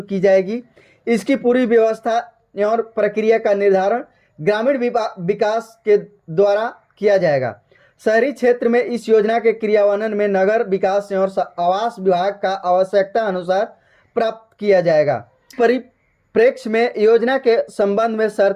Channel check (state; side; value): identical; both; correlation 1.00